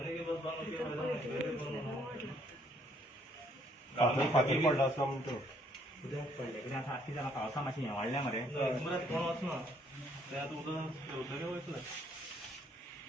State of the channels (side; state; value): both; normal; correlation 0.66